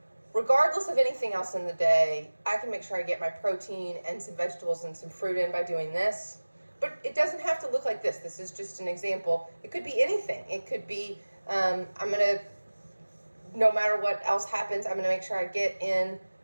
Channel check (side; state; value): both; inverted; correlation -1.00